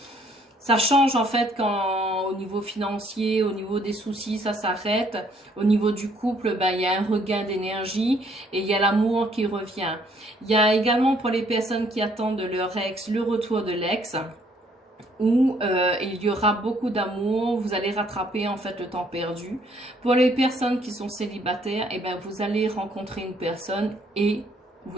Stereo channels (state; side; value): normal; both; correlation 0.65